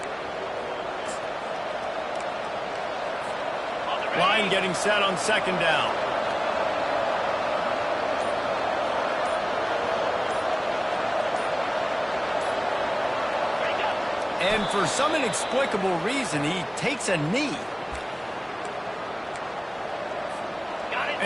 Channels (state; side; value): identical; both; correlation 1.00